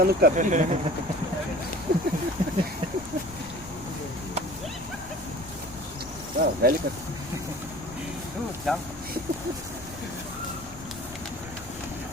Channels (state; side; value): noise; left; rumble, 17 dB below the sound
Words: o capim. Ah, velho, cara. Tchau.